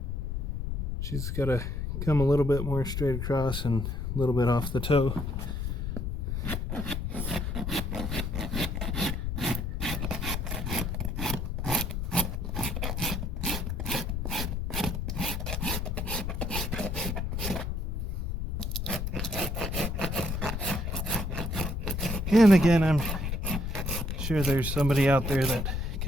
She's got to come a little bit more straight across and a little bit off the toe. And again, I'm sure there's somebody out there that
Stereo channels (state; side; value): noise; left; rumble, 2 dB below the sound